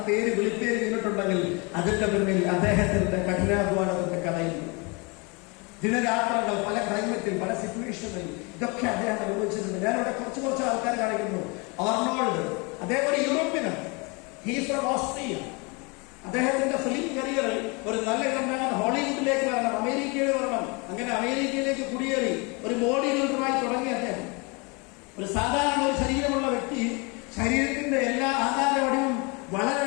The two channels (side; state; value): right; quieter; 29.9 dB